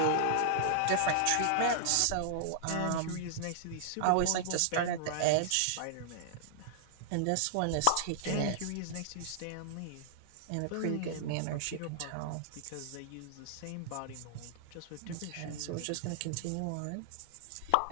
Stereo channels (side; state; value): both; different; correlation -0.01